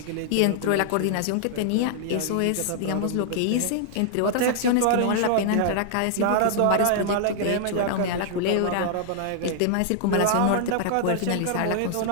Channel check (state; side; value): different; both; correlation -0.01